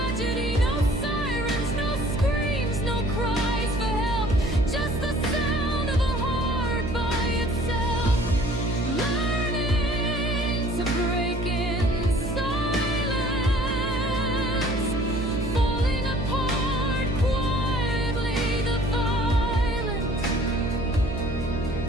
No sirens, no screams, no cries for help, just the sound of a heart by itself, learning to break in silence, falling apart quietly. The violence,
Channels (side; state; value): right; noise; hum, 5 dB below the sound